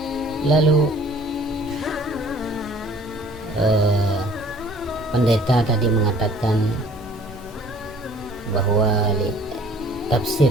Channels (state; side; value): normal; both; correlation 0.53